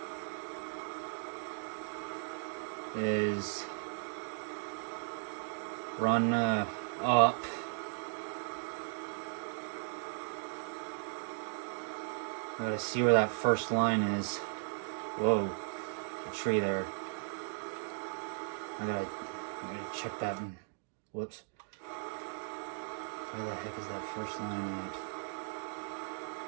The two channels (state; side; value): silent; left; digital silence